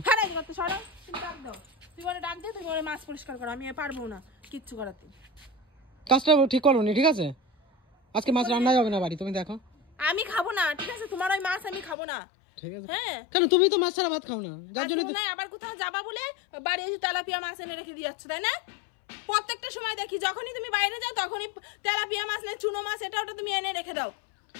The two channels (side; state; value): right; drops out; at 12.0 s